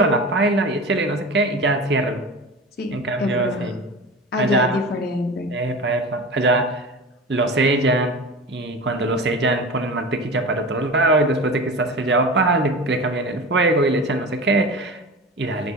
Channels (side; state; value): both; normal; correlation 0.32